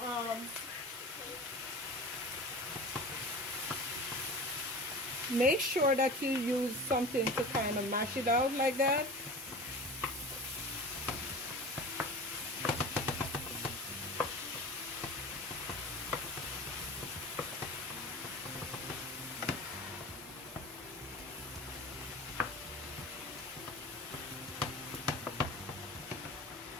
make sure that you use something to kind of mash it out like that.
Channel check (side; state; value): both; normal; correlation 0.35